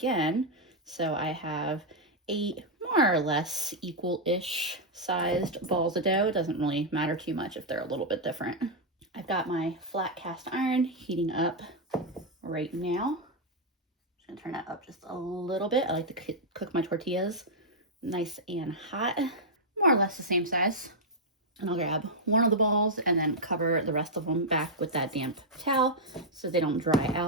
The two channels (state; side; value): normal; both; correlation -0.03